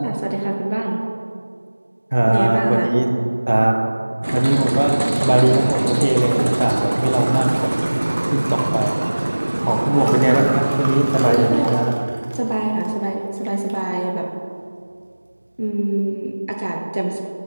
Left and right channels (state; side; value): inverted; both; correlation -1.00